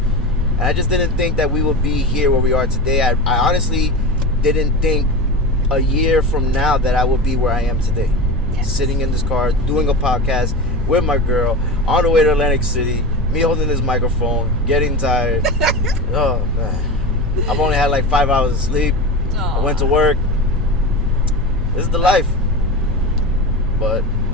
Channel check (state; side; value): normal; both; correlation 0.25